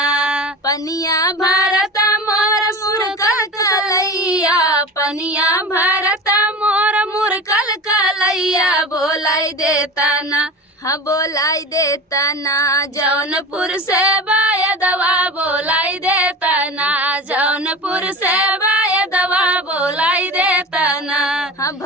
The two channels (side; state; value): both; normal; correlation 0.32